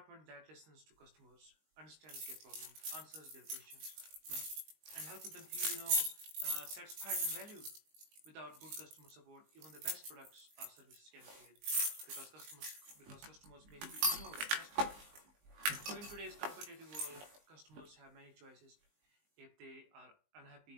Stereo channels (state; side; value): late; left; 19 ms